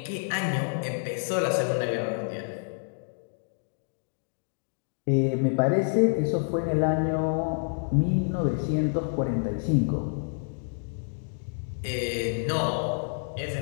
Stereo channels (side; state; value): right; silent; digital silence